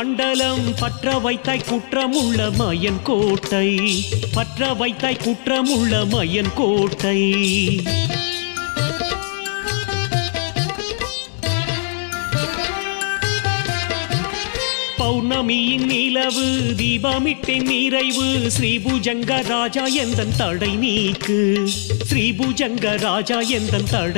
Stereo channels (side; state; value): right; silent; digital silence